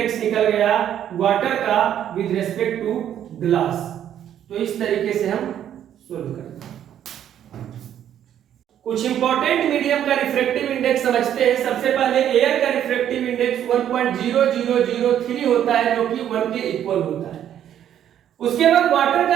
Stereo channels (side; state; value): left; quieter; 10.3 dB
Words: निकल गया वाटर का विद रिस्पेक्ट टू ग्लास। तो इस तरीके से हम सोल्व करते हैं। कुछ इंपॉर्टेंट मीडियम का रिफ्रैक्टिव इंडेक्स समझते हैं। सबसे पहले एयर का रिफ्रैक्टिव इंडेक्स 1.0003 होता है जो कि 1 के इक्वल होता है। उसके बाद वाटर का